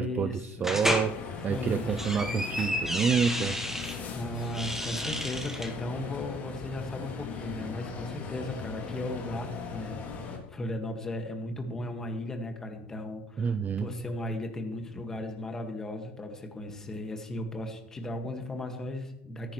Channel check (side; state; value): both; normal; correlation 0.66